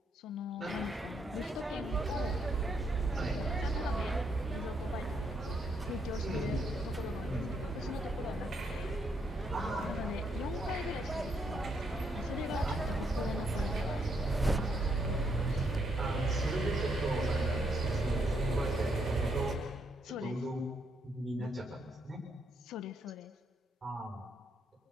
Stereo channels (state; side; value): normal; both; correlation 0.75